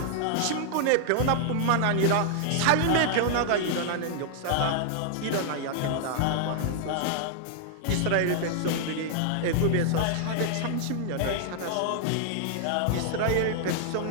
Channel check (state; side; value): different; both; correlation 0.00